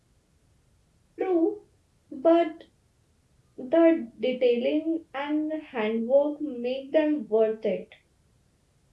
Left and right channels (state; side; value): identical; both; correlation 1.00